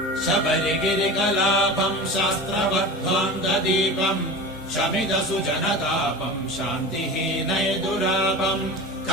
शबरिगिरिकलापं शास्त्रवद्ध्वान्तदीपं शमिदसुजनतापं शान्तिहीनैदुरापं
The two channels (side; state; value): both; normal; correlation 0.32